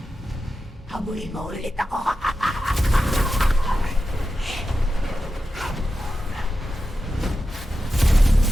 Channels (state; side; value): normal; both; correlation 0.91